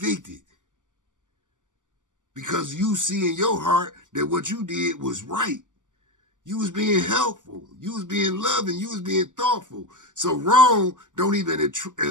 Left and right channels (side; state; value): left; late; 0.87 ms